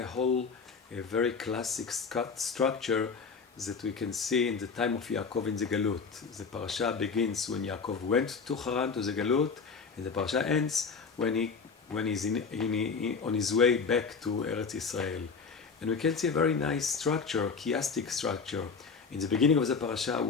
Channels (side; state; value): right; quieter; 5.2 dB